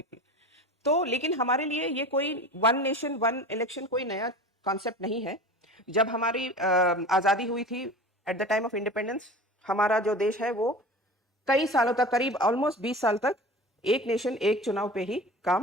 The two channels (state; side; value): normal; both; correlation 0.35